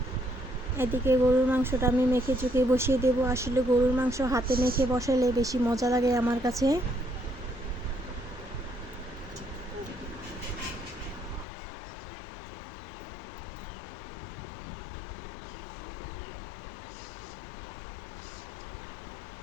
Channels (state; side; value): drops out; right; at 11.5 s